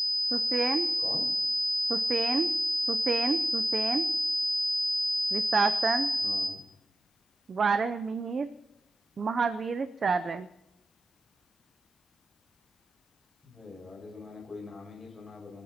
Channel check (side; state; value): both; normal; correlation 0.94